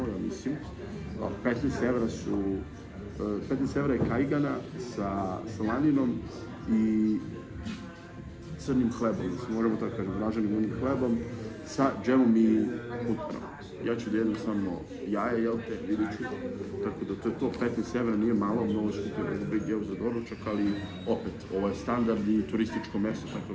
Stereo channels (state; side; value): identical; both; correlation 1.00